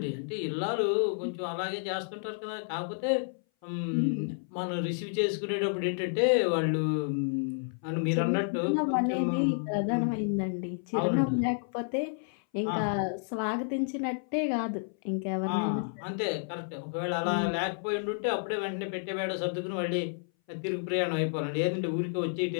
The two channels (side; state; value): right; silent; 57 dB below the other